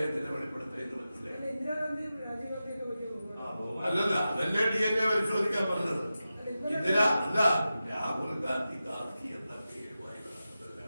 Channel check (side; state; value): both; inverted; correlation -0.93